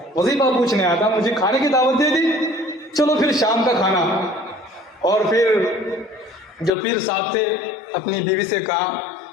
वजीफा पूछने आया था, मुझे खाने की दावत दे दी, चलो फिर शाम का खाना। और फिर जो पीर साहब थे अपनी बीवी से कहा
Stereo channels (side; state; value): right; drops out; at 6.7 s